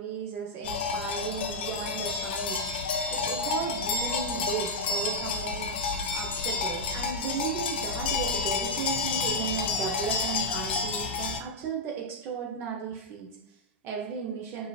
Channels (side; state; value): both; normal; correlation -0.03